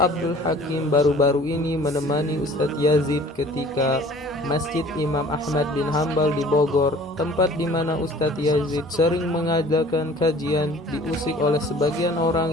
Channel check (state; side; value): normal; both; correlation 0.49